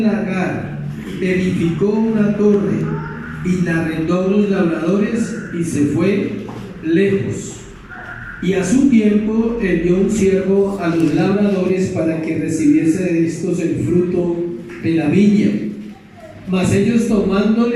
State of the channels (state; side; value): identical; both; correlation 1.00